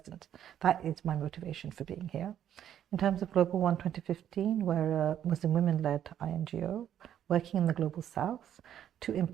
That is my motivation for being here. In terms of Global One 2015, we're a Muslim women-led INGO working in the Global South to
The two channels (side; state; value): left; quieter; 10.3 dB